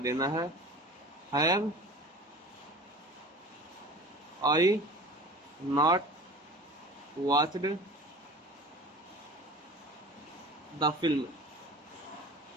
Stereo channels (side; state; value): both; normal; correlation 0.39